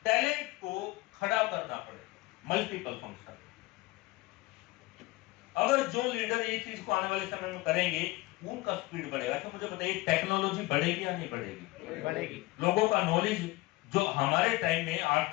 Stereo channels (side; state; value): right; quieter; 20.2 dB